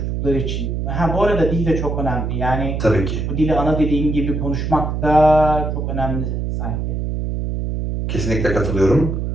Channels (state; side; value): noise; right; hum, 2 dB below the sound